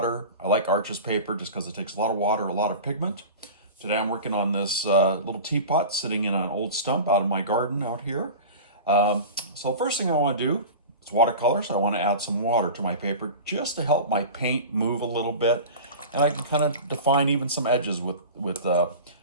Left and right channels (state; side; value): inverted; both; correlation -0.33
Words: I like Arches paper just because it takes a lot of water, a lot of pigment. Today I'm working on this little teapot sitting in an old stump out in my garden out here. So the first thing I want to do is watercolors. I want to add some water to my paper just to help my paint move a little bit. And I can kind of define even some edges with the